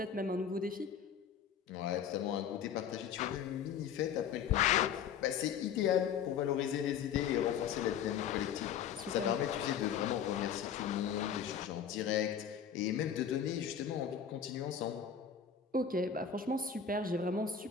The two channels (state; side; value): quieter; right; 7.9 dB